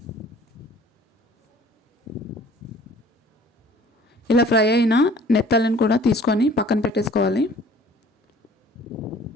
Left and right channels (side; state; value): both; normal; correlation 0.52